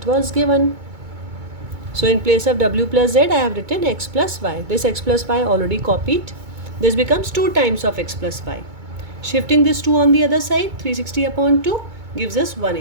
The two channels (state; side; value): late; left; 2.2 ms